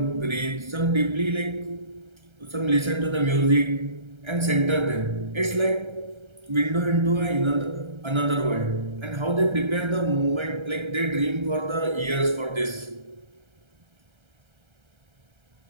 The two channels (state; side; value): late; left; 1.3 ms